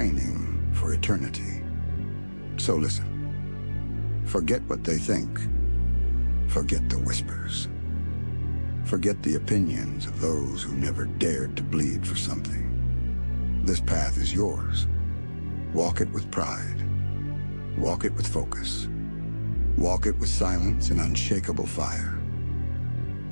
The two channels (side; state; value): both; inverted; correlation -1.00